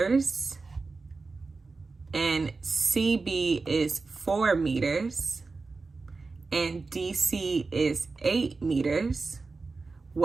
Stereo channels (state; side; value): quieter; left; 4.0 dB